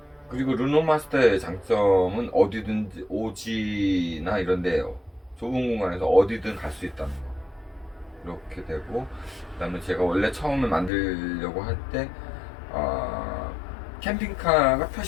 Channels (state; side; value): drops out; right; at 10.9 s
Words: 그리고 르노마스터의 장점은 어디든지 오지나 이런데 좁은 공간에서 어디든 갈 수 있다는 거, 이렇게 되고, 그 다음에 제가 원래 처음에 만들려고 할 때 캠핑카가